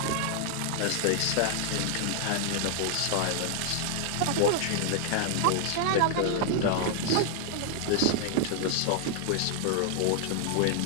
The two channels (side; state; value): both; different; correlation 0.00